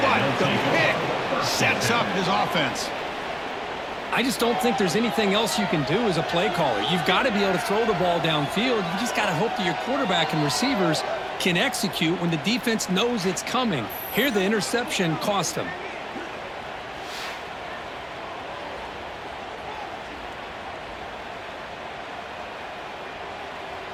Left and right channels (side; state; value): both; identical; correlation 1.00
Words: but the pick sets up his offense. I just don't think there's anything else you can do as a play caller. You've got to be able to throw the ball downfield. You just got to hope that your quarterback and receivers can execute when the defense knows it's coming. Here, the interception cost him.